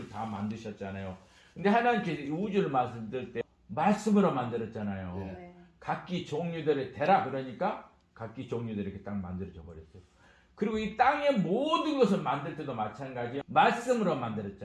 다 만드셨잖아요. 근데 하나님께서 이 우주를 만들 때 말씀으로 만들었잖아요. 네. 각기 종류들의 대라 그러니까 각기 종류들이 이렇게 딱 만들어져 버렸어요. 그리고 이 땅의 모든 것을 만들 때도 마찬가지예요. 말씀으로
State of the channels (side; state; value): both; identical; correlation 1.00